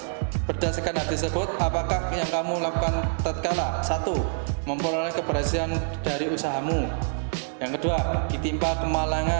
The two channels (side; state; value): left; silent; digital silence